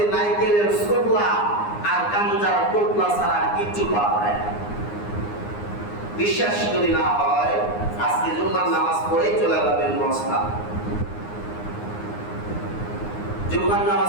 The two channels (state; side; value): late; right; 9.7 ms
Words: নাইকেলের ছোবলা আর গাঞ্জা টোপলা ছাড়া কিচ্ছু পাওয়া যায় না। বিশ্বাস যদি না হয় আজকে জুম্মার নামাজ পড়ে চলে যাবেন মস্তান, জুম্মার